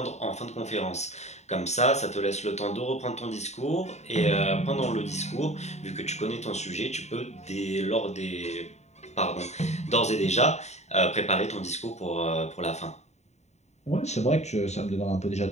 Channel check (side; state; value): right; late; 0.32 ms